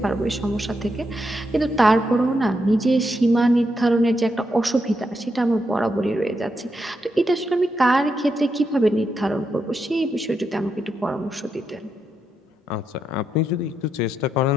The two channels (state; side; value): normal; both; correlation 0.83